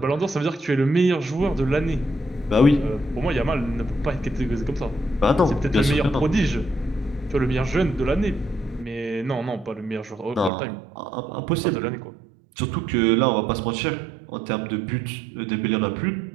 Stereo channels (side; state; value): left; drops out; at 10.5 s